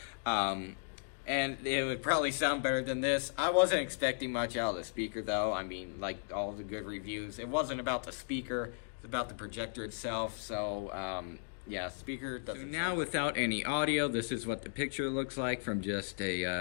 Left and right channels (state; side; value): silent; right; digital silence